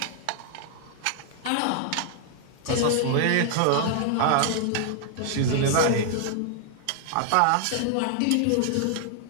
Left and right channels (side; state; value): both; different; correlation 0.00